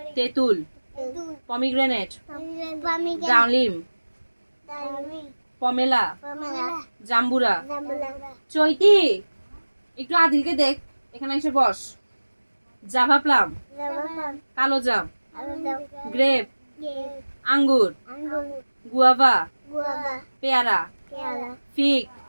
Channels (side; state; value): both; inverted; correlation -1.00